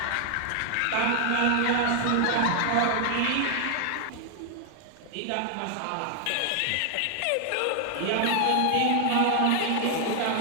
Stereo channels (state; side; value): different; both; correlation 0.00